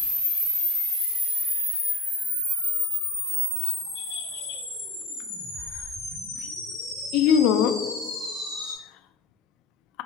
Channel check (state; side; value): quieter; right; 3.5 dB